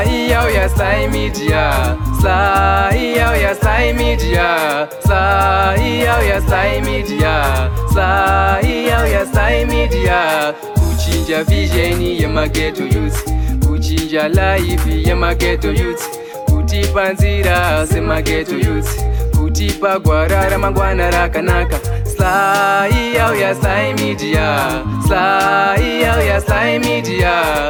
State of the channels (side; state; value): both; identical; correlation 1.00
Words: yauya SlyMedia, Sly yauya SlyMedia, Sly yauya SlyMedia, Sly yauya SlyMedia. Kuchinja vision yemageto youth, kuchinja life yemageto youth, kutipa nzira semageto youth, kutipa gwara ramangwana rakanaka. Sly yauya SlyMedia, Sly yauya